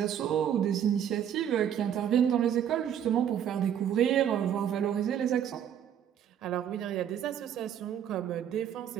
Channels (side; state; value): left; quieter; 9.5 dB